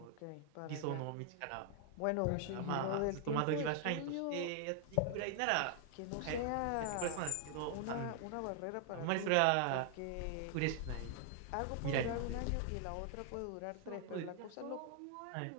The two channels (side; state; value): both; different; correlation 0.00